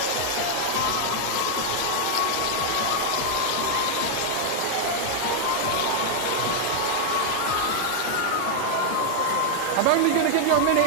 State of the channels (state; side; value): different; both; correlation 0.00